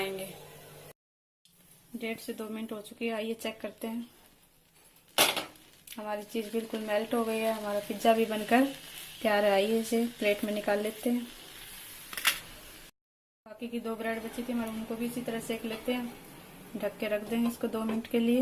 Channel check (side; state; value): both; identical; correlation 1.00